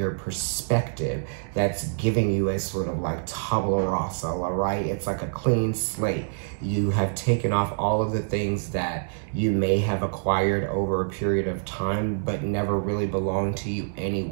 perspective that's giving you a sort of like tabula rasa, all right? It's like a clean slate. You have taken off all of the things that you may have acquired over a period of time, but never really belonged to you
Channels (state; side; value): silent; left; digital silence